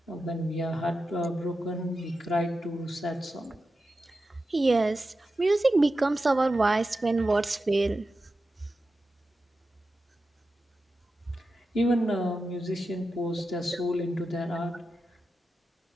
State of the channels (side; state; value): both; normal; correlation 0.91